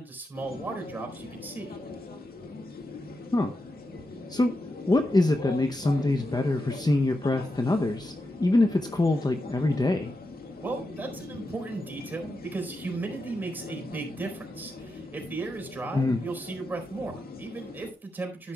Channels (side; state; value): both; normal; correlation 0.87